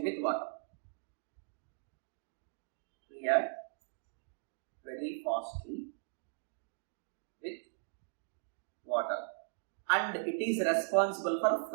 with water. React very fastly with water, and it is responsible for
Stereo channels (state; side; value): silent; left; digital silence